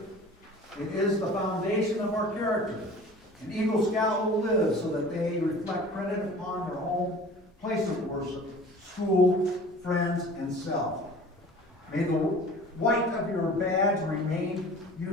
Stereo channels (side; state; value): both; normal; correlation 0.43